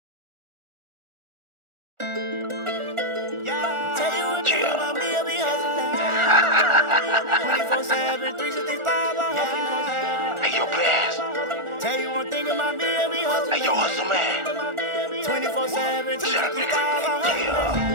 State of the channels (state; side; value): late; left; 1.4 ms